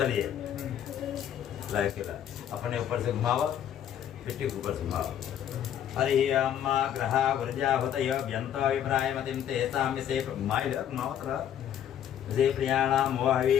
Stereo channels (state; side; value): quieter; right; 10.0 dB